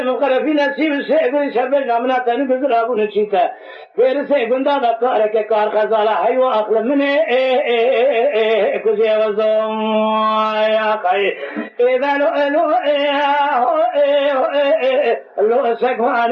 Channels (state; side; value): identical; both; correlation 1.00